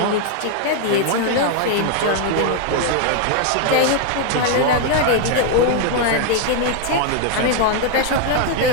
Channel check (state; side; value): different; both; correlation 0.00